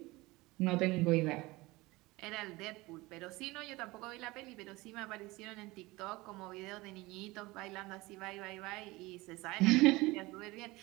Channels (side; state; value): left; quieter; 21.5 dB